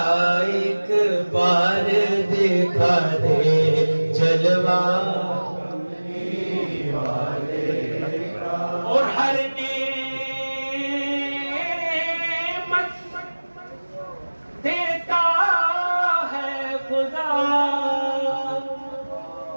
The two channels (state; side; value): inverted; both; correlation -1.00